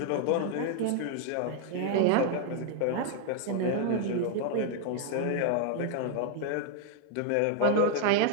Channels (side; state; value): both; different; correlation 0.00